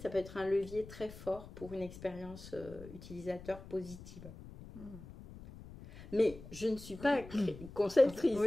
peut être un levier très fort pour une expérience utilisateur positive. Mais je ne suis pas conceptrice,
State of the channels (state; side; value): noise; left; rumble, 15 dB below the sound